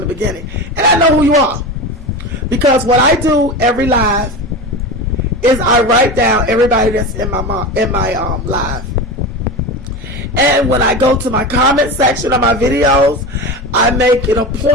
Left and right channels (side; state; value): both; normal; correlation 0.25